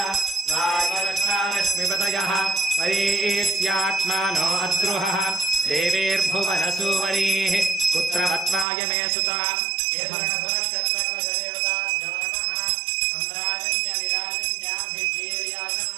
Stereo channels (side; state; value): left; drops out; at 8.7 s